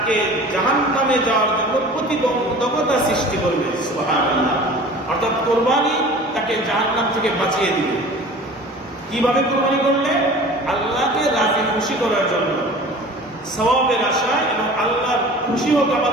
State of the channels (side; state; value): both; normal; correlation 0.42